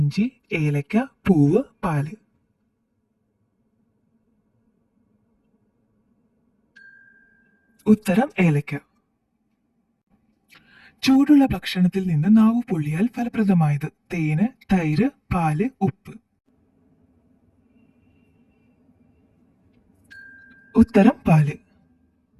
ഏലക്ക, പൂവ്, പാല്. ഉത്തരം ഏലക്ക. ചൂടുള്ള ഭക്ഷണത്തിൽ നിന്ന് നാവ് പൊള്ളിയാൽ ഫലപ്രദമായത്: തേന്, തൈര്, പാല്, ഉപ്പ്. ഉത്തരം പാല്.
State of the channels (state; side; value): identical; both; correlation 1.00